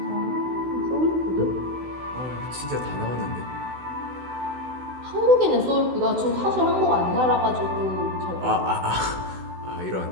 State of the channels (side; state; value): left; late; 16 ms